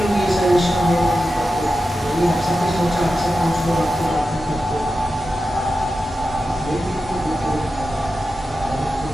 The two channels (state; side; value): normal; both; correlation 0.91